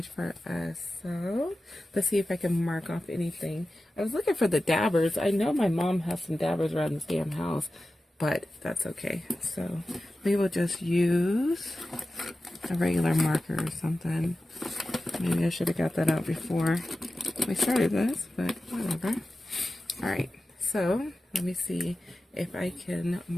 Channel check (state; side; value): normal; both; correlation 0.94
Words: for us. So let's see if I can mark off anything. I was looking for the dabbers. I know my mom has some dabbers around this damn house, but that's okay. So we will just use a regular marker or something. Maybe I should have got that out before we started this, but whatever. All right, so let me see if I can